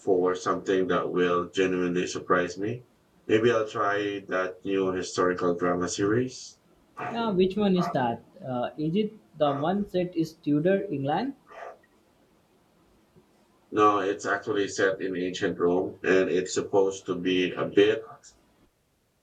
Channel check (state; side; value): identical; both; correlation 1.00